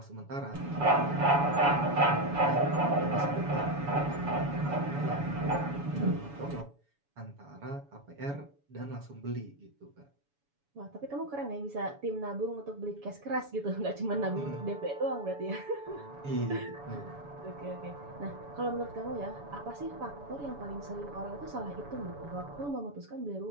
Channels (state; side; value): late; left; 7.1 ms